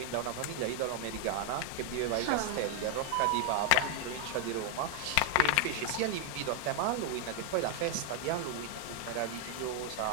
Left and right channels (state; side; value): different; both; correlation 0.00